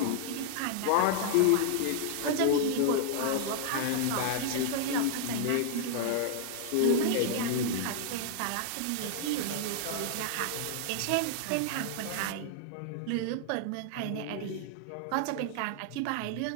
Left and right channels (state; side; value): different; both; correlation -0.01